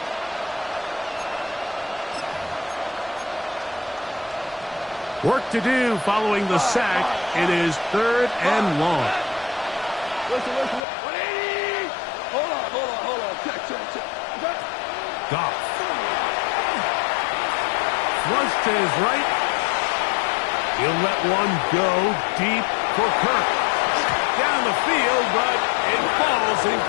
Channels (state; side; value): drops out; right; at 10.8 s